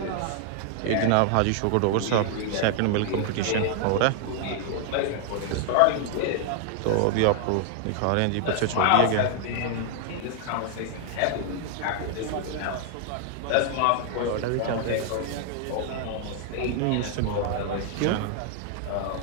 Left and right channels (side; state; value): both; different; correlation 0.00